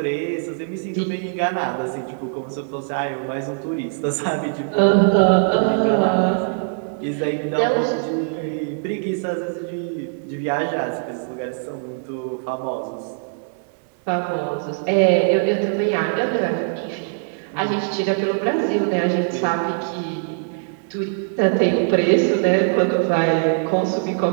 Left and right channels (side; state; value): left; silent; digital silence